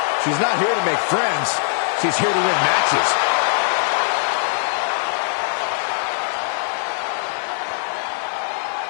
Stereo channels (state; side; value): silent; right; digital silence